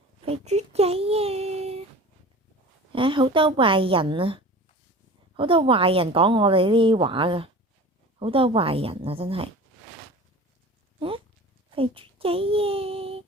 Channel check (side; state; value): both; normal; correlation 0.38